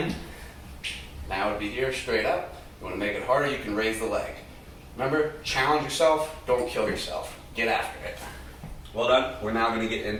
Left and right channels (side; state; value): both; identical; correlation 1.00